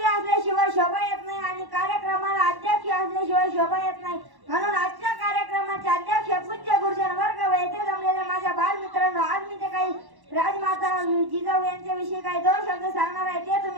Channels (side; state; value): left; late; 1.1 ms